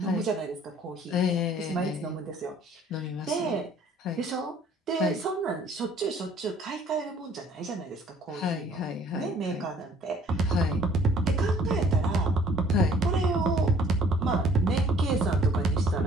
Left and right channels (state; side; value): normal; both; correlation 0.56